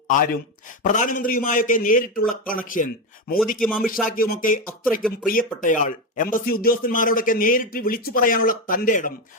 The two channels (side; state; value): both; normal; correlation 0.13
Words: ആരും. പ്രധാനമന്ത്രിയുമായൊക്കെ നേരിട്ടുള്ള കണക്ഷൻ, മോദിക്കും അമിത്ഷായ്ക്കുമൊക്കെ അത്രയ്ക്കും പ്രിയപ്പെട്ടയാൾ. എംബസി ഉദ്യോഗസ്ഥന്മാരോടൊക്കെ നേരിട്ട് വിളിച്ചു പറയാനുള്ള തന്റെ ഇടം,